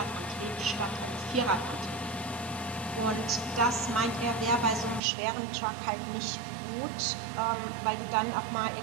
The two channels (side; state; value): left; drops out; at 5.0 s